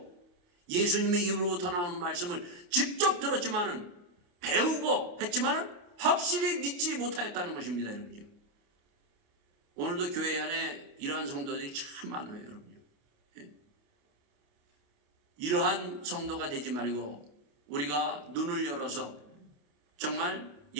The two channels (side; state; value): left; late; 28 ms